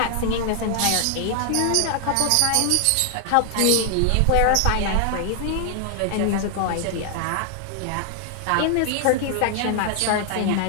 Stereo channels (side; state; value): both; different; correlation 0.00